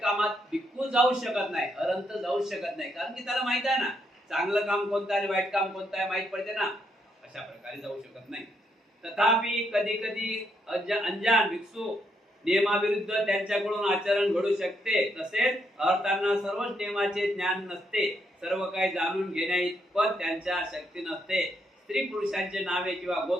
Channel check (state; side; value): normal; both; correlation 0.76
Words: कामात भिक्खू जाऊ शकत नाही, अरंत जाऊ शकत नाही, कारण की त्याला माहित आहे ना चांगलं काम कोणतं आणि वाईट काम कोणतं आहे, माहित पडते ना. अशा प्रकारे जाऊ शकत नाही. तथापि कधी कधी अंजान भिक्षू नियमाविरुद्ध त्यांच्याकडून आचरण घडू शकते. तसेच अर्थांना सर्वच नियमाचे ज्ञान नसते, सर्व काही जाणून घेण्याइतपत त्यांच्या शक्ती नसते. स्त्री पुरुषांचे नावे किंवा